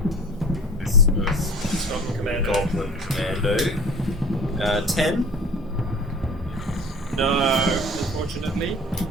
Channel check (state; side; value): normal; both; correlation 0.43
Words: this first Goblin Commando. goblin commando. 10. No, unfortunately.